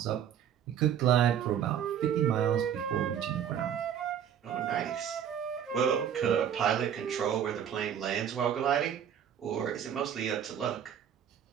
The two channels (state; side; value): quieter; left; 9.0 dB